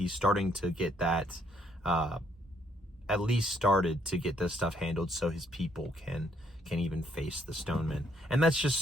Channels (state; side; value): normal; both; correlation 0.70